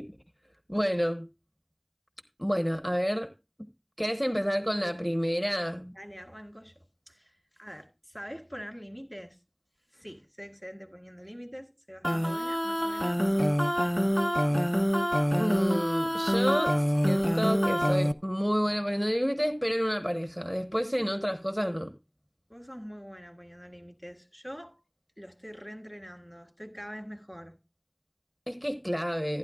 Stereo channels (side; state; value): both; identical; correlation 1.00